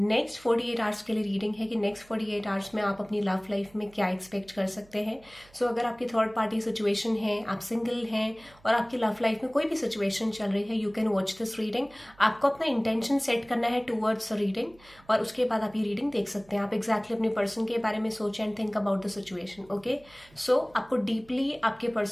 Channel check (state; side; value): noise; right; hum, 27 dB below the sound